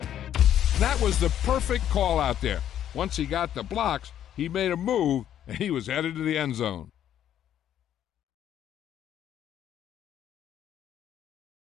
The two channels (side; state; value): right; quieter; 10.6 dB